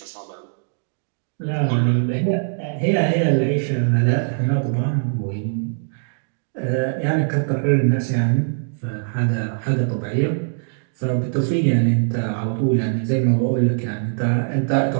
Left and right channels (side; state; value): left; silent; digital silence